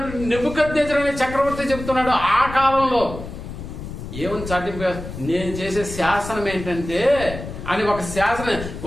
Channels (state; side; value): noise; left; rumble, 10 dB below the sound